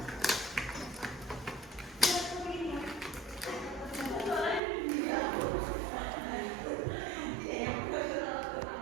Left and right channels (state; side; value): drops out; left; at 4.6 s